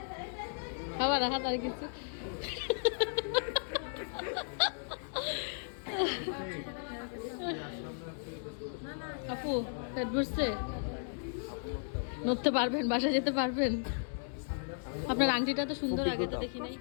খাওয়া রাহাত আর কিছু। আপু পেট ভরছে? নড়তে পারবেন? বাসা যেতে পারবেন? আপনার আংটিটা তো সুন্দর, খুব আগে তো বিগত। দেখি নাই।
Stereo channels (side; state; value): right; silent; digital silence